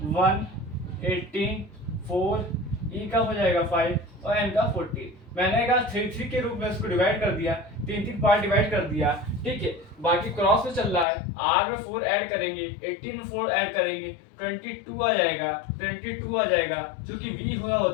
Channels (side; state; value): right; drops out; at 11.1 s